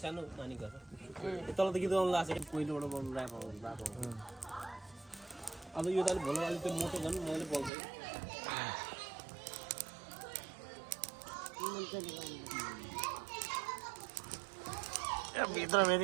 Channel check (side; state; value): left; drops out; at 7.7 s